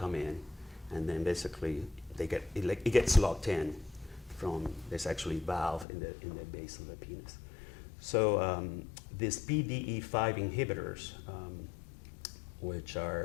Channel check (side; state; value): right; drops out; at 5.9 s